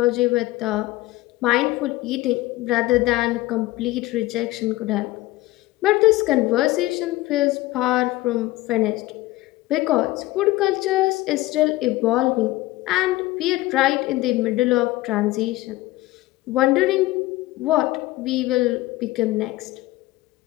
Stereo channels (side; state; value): right; quieter; 18.1 dB